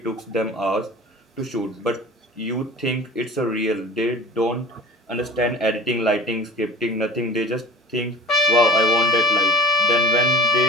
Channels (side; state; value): both; normal; correlation 0.41